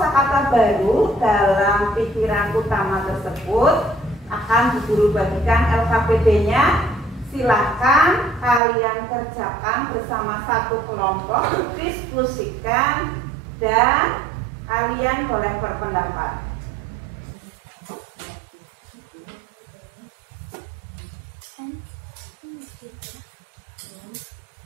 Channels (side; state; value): left; drops out; at 8.6 s